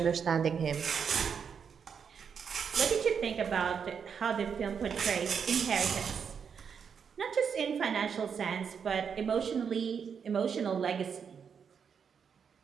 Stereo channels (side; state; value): left; quieter; 6.8 dB